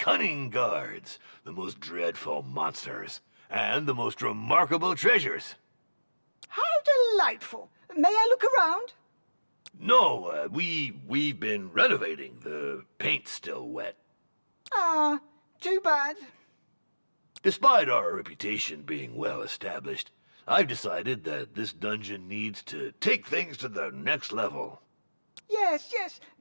guards, the most dreadful monsters, and the most remarkable treasures. How delightful! May I look around? No, we've been renovating. The paint's still wet. Ah, too bad. Despite our reputation being well established, I've decided that this dungeon needs to take things to the next level. Yes,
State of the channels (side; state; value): both; inverted; correlation -1.00